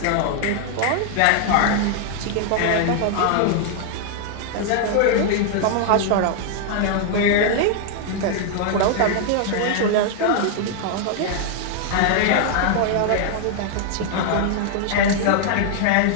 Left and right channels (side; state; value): both; different; correlation 0.00